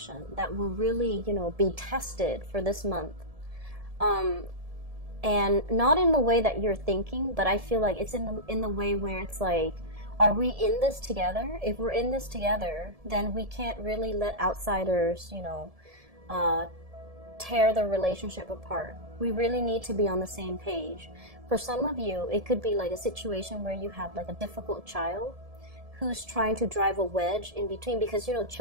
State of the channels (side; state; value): left; late; 1.7 ms